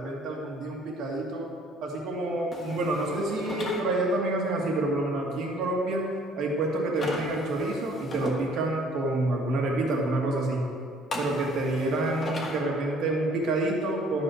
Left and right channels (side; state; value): both; normal; correlation 0.57